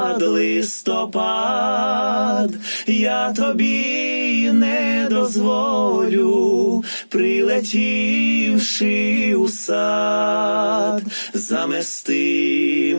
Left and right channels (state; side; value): inverted; both; correlation -1.00